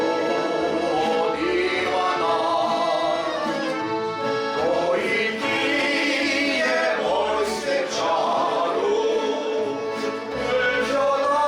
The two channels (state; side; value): identical; both; correlation 1.00